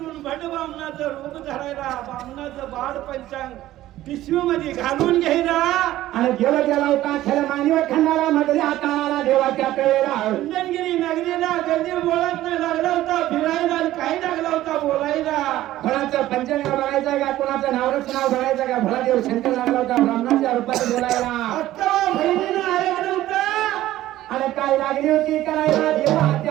भट बामणाचं रूप धरायला बामणाचं बाळ पंचांग पिशवीमध्ये घालून घ्यायला. आणि देव गेला होता खरं मानव खंडाला मधल्या हाताला देवाच्या वेळेला. चंदनगिरी नगरीला गदी बोळात लागला होता फिरायला आणि काही लागला होता बोलायला. कोणाचं पंचांग बघायचं का कोणाचं नावरच नाव बघायचं का? भोळा देव शंकर लागला होता ब्राह्मणाच्या रूपात बोलायला. अक्का बहिणीनं ऐकलं होतं. आणि काय लागली होती करायला देवा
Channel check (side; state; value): left; quieter; 14.7 dB